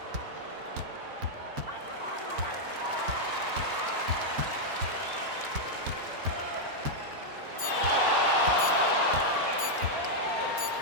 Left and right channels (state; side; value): late; left; 4.4 ms